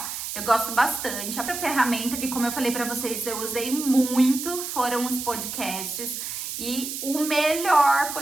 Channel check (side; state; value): right; noise; hiss, 6 dB below the sound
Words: Eu gosto bastante. A ferramenta que, como eu falei pra vocês, eu usei muito, foram os podcasts. E o melhor